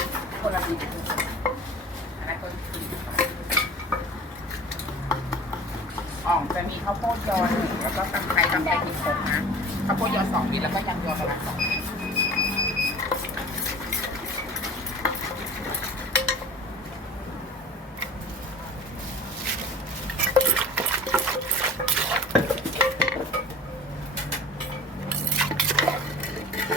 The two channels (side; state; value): both; normal; correlation 0.40